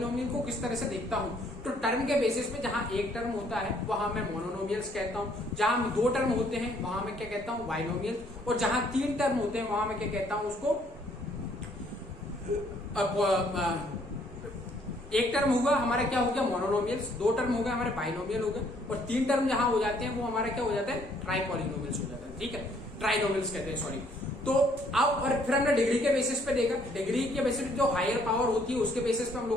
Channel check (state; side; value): normal; both; correlation 0.65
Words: को किस तरह से देखता हूं, तो टर्म के बेसिस पे जहां एक टर्म होता है वहां मैं मोनोनोमियल्स कहता हूं, जहां दो टर्म होते हैं वहां मैं क्या कहता हूं, बाइनोमियल, और जहां तीन टर्म होते हैं वहां मैं क्या कहता हूं, उसको एक टर्म होगा हमारा क्या हो गया, मोनोनोमियल्स, दो टर्म हो गए हमारे बाइनोमियल हो गए, और तीन टर्म जहां हो जाते हैं वो हमारा क्या हो जाता है, ट्राइपॉलिनोमियल्स हो जाता है, ठीक है, ट्राइनोमियल्स कहते हैं, सॉरी। तो अब और फिर हमने डिग्री के बेसिस पे देखा, डिग्री के बेसिस पे जो हायर पावर होती है उसके बेसिस पे हम